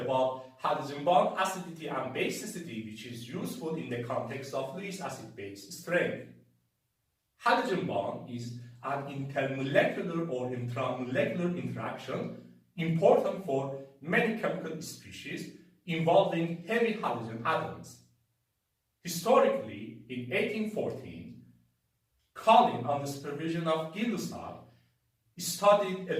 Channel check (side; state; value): both; identical; correlation 1.00